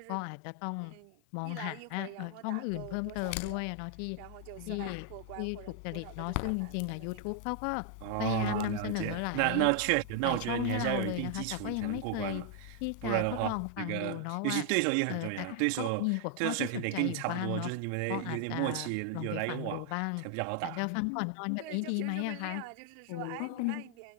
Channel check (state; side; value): different; both; correlation 0.00